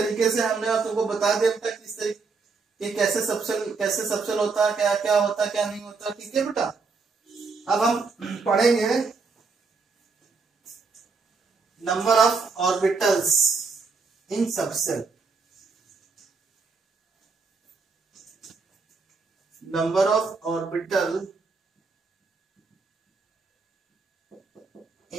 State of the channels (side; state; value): left; quieter; 4.5 dB